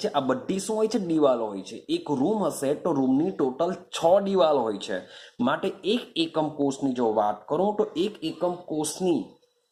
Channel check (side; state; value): both; identical; correlation 1.00